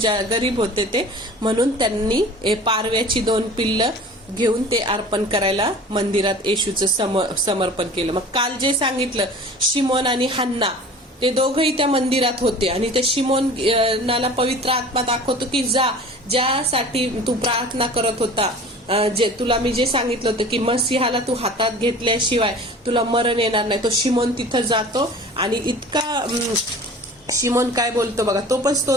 गरीब होते ते, म्हणून त्यांनी पारव्याची 2 पिल्लं घेऊन ते अर्पण करायला मंदिरात येशूचं समर्पण केलं. मग काल जे सांगितलं, शिमोन आणि हन्ना ते दोघंही त्या मंदिरात होते. आणि ते शिमोनाला पवित्र आत्मा दाखवतो की ज्यासाठी तू प्रार्थना करत होता, तुला मी जे सांगितलं होतं की मसीहाला तू हातात घेतल्याशिवाय तुला मरण येणार नाही, तो शिमोन तिथं जातो. आणि इतका शिमोन काय बोलतो बघा, तो पण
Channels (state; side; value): normal; both; correlation 0.42